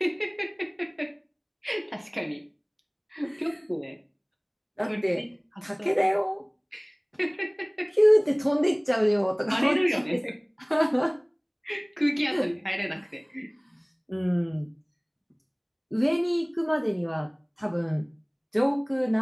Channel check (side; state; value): both; identical; correlation 1.00